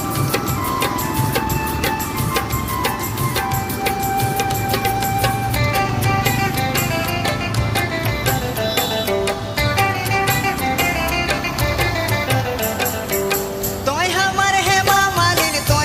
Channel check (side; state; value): both; identical; correlation 1.00